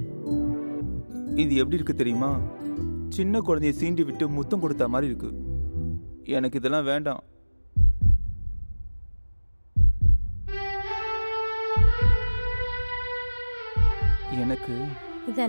இது எப்படி இருக்கு தெரியுமா? சின்ன குழந்தைய சீண்டி விட்டு முத்தம் கொடுத்த மாதிரி இருக்கு. எனக்கு இதெல்லாம் வேண்டாம். எனக்கு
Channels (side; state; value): both; inverted; correlation -1.00